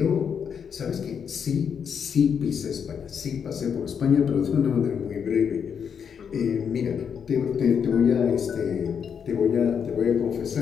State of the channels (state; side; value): quieter; right; 7.2 dB